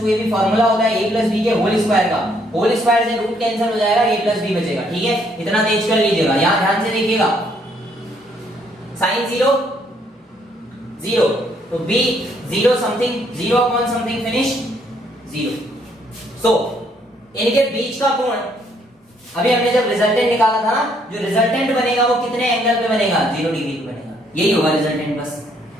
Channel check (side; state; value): both; normal; correlation 0.69